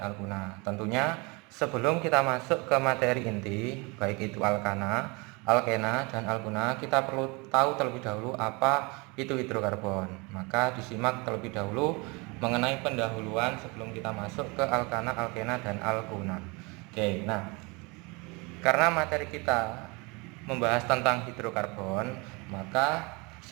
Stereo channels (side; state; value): left; quieter; 27.9 dB